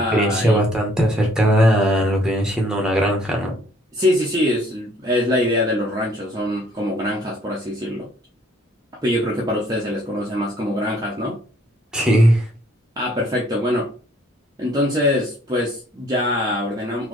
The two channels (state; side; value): normal; both; correlation 0.61